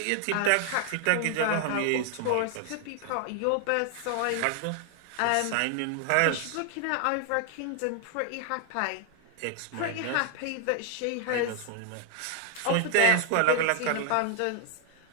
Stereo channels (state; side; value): different; both; correlation 0.00